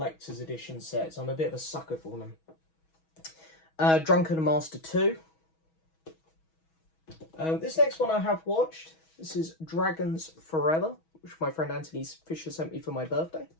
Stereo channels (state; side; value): late; right; 6.2 ms